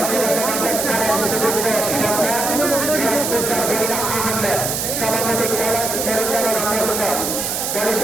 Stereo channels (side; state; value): right; noise; hiss, 2 dB below the sound